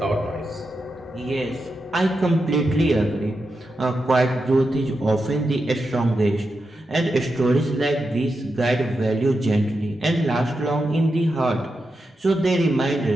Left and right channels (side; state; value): both; normal; correlation 0.88